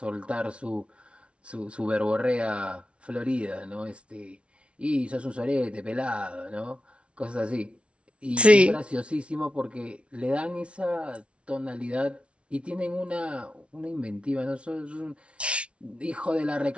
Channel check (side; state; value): left; late; 0.060 ms